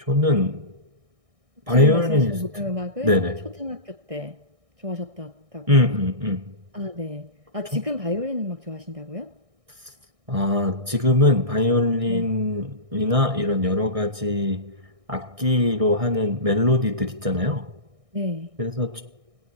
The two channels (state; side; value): late; left; 1.6 ms